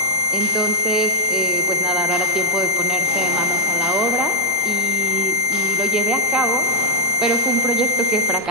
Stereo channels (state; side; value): normal; both; correlation -0.11